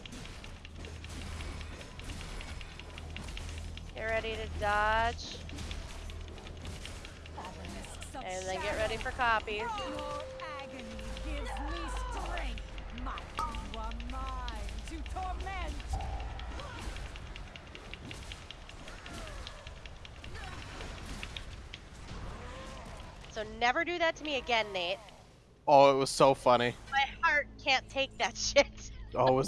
Get ready to dodge. And then get ready for copies. Your agony gives me strength. You are mine to torment. So never do that to me again, Nate. Oh, it was so funny. My heart can't take that shit. Oh, it was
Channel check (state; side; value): identical; both; correlation 1.00